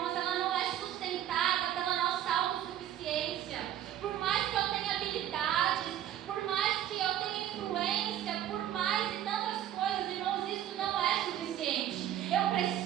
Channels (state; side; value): quieter; left; 11.5 dB